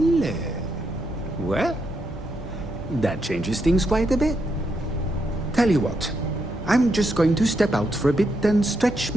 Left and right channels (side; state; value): both; normal; correlation 0.80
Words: Well, that changes things quite a bit. Tell you what, I'm just going to step out for a bit and stretch